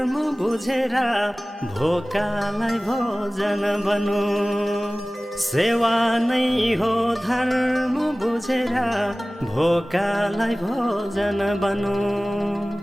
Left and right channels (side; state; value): both; normal; correlation 0.98